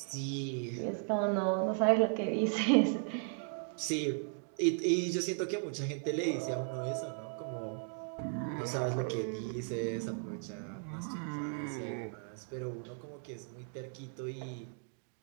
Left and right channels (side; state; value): left; silent; 54 dB below the other